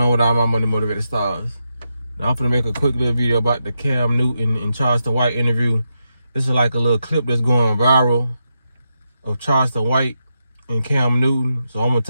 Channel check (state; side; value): inverted; both; correlation -0.86